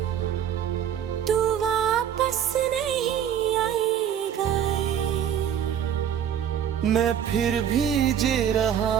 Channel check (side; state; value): left; quieter; 9.3 dB